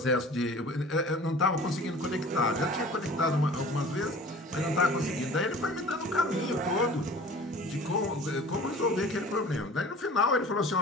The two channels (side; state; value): both; normal; correlation 0.43